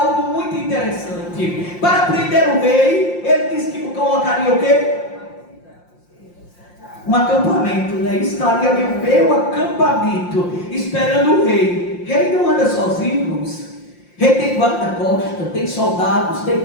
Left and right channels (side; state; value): right; late; 5.7 ms